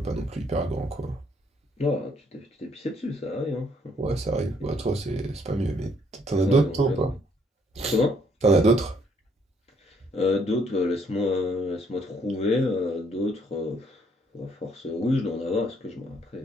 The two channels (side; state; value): both; normal; correlation 0.68